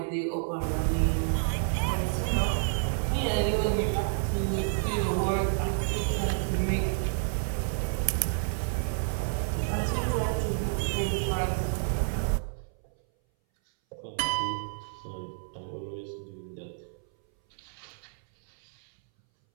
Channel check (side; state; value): left; silent; 58 dB below the other